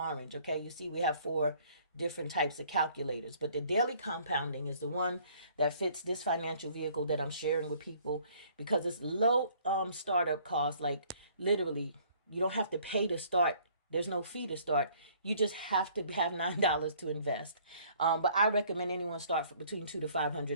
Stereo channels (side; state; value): both; inverted; correlation -0.58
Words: Okay. You see we have 4 different types of calculators, but the daily compounding is the one that fits this financial vehicle that I'm sharing with people because it's low startup costs. Like literally, you don't have to pay to start. There's no fee to start. You just have to have $9 to invest. But I recommend anyone start for between $200 to